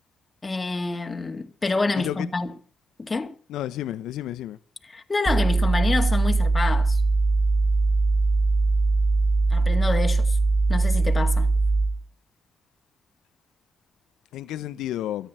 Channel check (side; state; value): both; normal; correlation 0.92